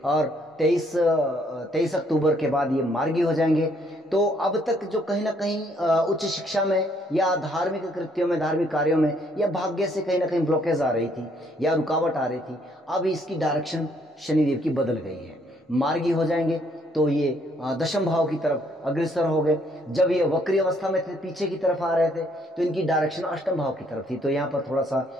और 23 अक्टूबर के बाद ये मार्गी हो जाएंगे। तो अब तक जो कहीं ना कहीं उच्च शिक्षा में या धार्मिक कृत्यों में, धार्मिक कार्यों में या भाग्य से कहीं ना कहीं ब्लॉकेज आ रही थी या रुकावट आ रही थी, अब इसकी डायरेक्शन शनिदेव की बदल गई है। मार्गी हो जाएंगे तो ये दशम भाव की तरफ अग्रसर हो गए। जब ये वक्री अवस्था में थे, पीछे की तरफ आ रहे थे, तो इनकी डायरेक्शन अष्टम भाव की तरफ थी। तो यहाँ पर थोड़ा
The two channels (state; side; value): normal; both; correlation 0.67